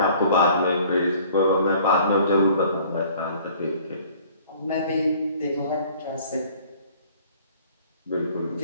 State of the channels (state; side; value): inverted; both; correlation -0.53